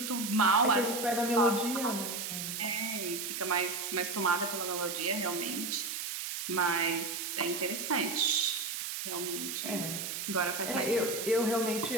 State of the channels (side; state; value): right; noise; hiss, 4 dB below the sound